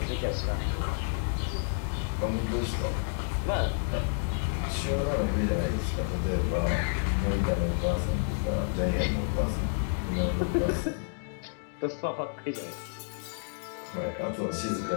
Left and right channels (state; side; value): silent; right; digital silence